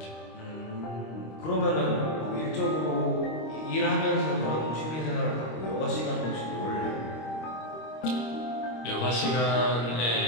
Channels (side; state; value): right; late; 25 ms